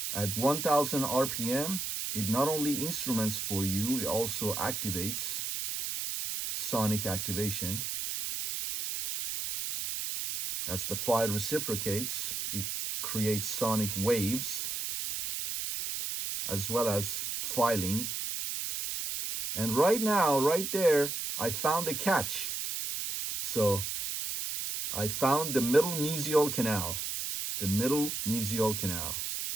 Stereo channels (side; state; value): right; noise; hiss, 3 dB below the sound